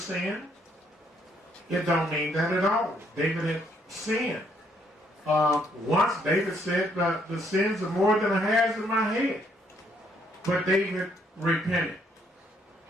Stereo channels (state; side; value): normal; both; correlation 0.69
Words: It don't mean that at all. David had sinned. Once David said, the sins are more than a hairs in my head. But David repented.